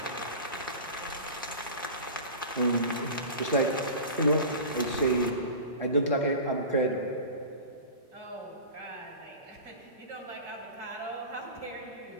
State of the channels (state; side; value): inverted; both; correlation -0.34